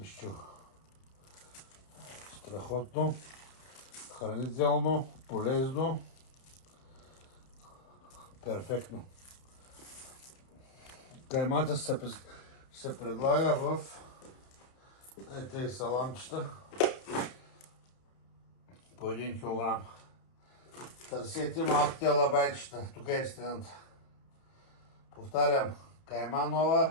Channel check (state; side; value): late; right; 31 ms